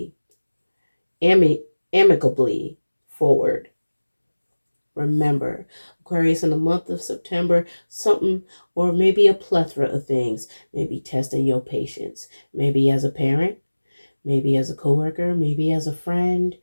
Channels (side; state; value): both; inverted; correlation -1.00